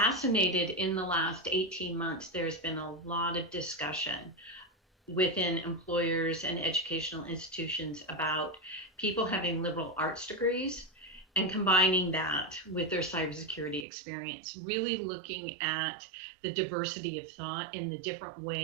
In the last 18 months, there's been a lot of discussion within employers and educational institutions about people having liberal arts degrees and combining that with their cybersecurity experience, really looking at the diversity of thought and the different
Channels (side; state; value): left; drops out; at 13.9 s